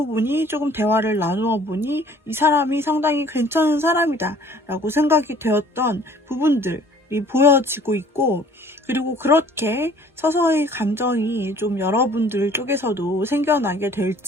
보니 조금 대화를 나누어 보니 이 사람이 상당히 괜찮은 사람이다 라고 생각이 되었던 부분들이 보여지고 있고, 그리고 그렇게 서서히 감정이 좀 여러분들 쪽에서도 생겨나게 될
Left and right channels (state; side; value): normal; both; correlation 0.53